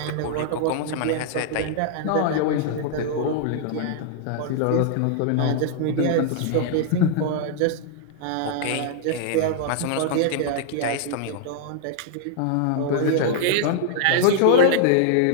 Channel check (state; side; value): different; both; correlation -0.01